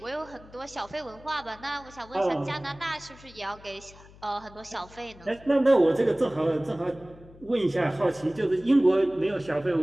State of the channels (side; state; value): left; noise; hum, 22 dB below the sound